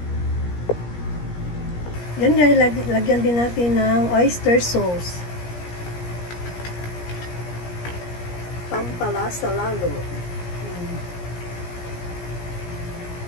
Yan guys, lagyan din natin ng oyster sauce. Pampalasa lalo.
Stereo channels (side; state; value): right; late; 17 ms